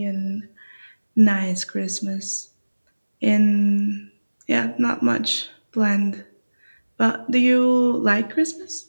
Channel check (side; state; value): both; inverted; correlation -1.00